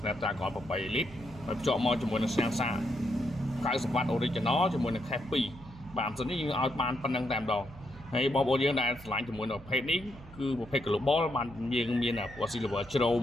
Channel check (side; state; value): right; noise; hum, 18 dB below the sound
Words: 8 lít ហើយភ្ជាប់មកជាមួយនឹងសាំងសា90W Original ជាមួយនឹង Cache 2បាទសិននេះយើងឲ្យបានប៉ុណ្្នឹងតែម្ដងហើយបងប្អូនយើងដែលឆ្លាញ់ជាមួយនឹងប្រភេទនេះគឺប្រភេទ Global បានយើងមានពណ៌ Silver ជ្រោម